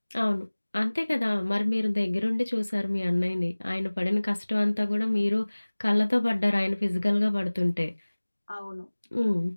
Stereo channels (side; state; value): both; inverted; correlation -1.00